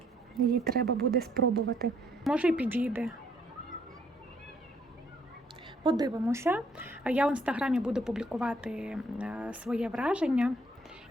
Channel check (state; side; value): normal; both; correlation 0.66